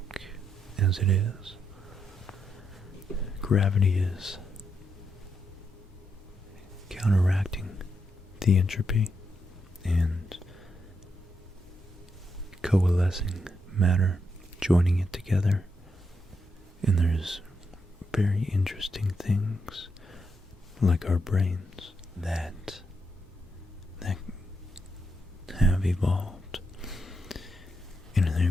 as it is, gravity is counteracting the entropy and coalescing matter, joining it together. And there's very interesting things like our brains that have evolved, and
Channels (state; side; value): normal; both; correlation 0.81